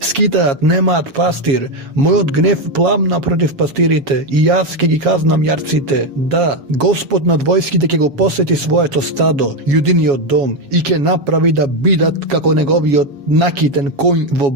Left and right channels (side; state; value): left; late; 7.2 ms